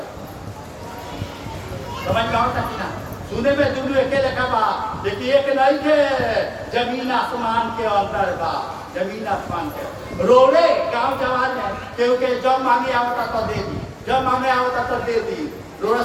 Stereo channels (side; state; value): both; identical; correlation 1.00